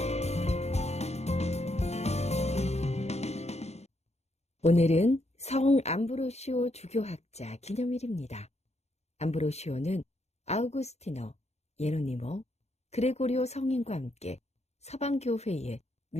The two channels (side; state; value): right; late; 0.31 ms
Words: 오늘은 성 암브로시오 주교학자 기념일입니다. 암브로시오는 아우구스티노, 예로니모, 그레고리오 성인과 함께 서방교회의